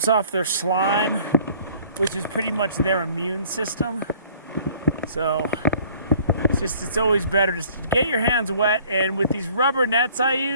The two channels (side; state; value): both; inverted; correlation -0.55